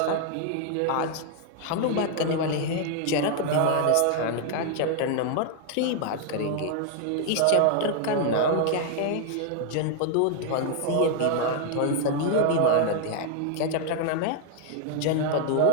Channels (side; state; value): both; different; correlation 0.00